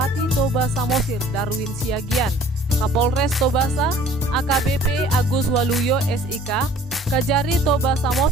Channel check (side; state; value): both; normal; correlation 0.51